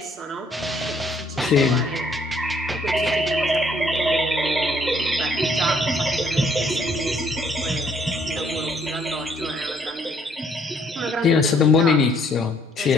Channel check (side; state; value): both; normal; correlation 0.66